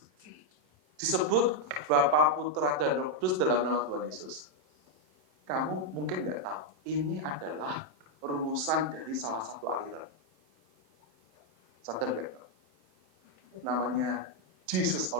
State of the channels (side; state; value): left; late; 27 ms